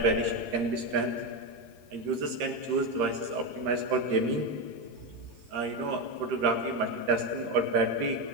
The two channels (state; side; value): late; left; 13 ms